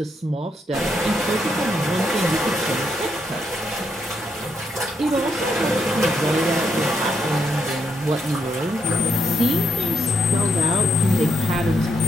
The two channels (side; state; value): both; normal; correlation 0.77